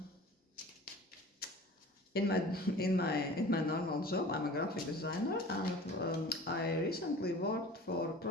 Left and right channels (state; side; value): normal; both; correlation 0.42